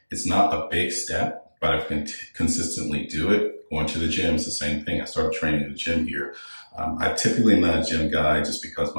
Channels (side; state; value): both; inverted; correlation -1.00